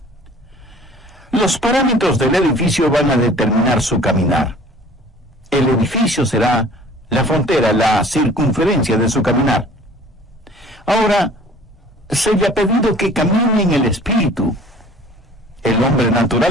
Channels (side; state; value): both; normal; correlation 0.49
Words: Los parámetros del edificio van a determinar su caminar. El edificio será la frontera, la circunferencia de su caminar. Ahora, se le ha pedido que camine en el Espíritu. El hombre